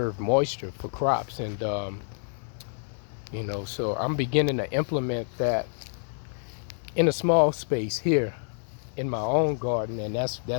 moisture for crops. And you know, so I'm beginning to implement that in a small space here in my own garden, and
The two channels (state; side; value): silent; right; 59 dB below the other